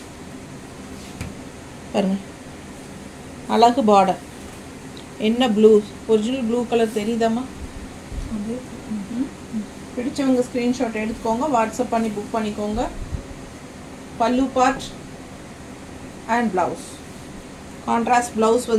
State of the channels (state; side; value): identical; both; correlation 1.00